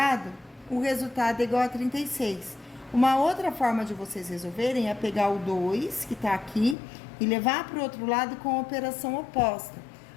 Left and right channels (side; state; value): right; drops out; at 6.8 s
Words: o resultado é igual a 36. Uma outra forma de vocês resolverem é pegar o 2, que está aqui, e levar para o outro lado com a operação oposta.